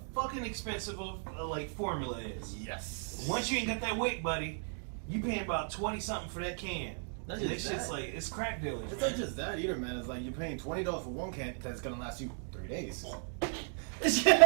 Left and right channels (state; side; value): silent; left; 55 dB below the other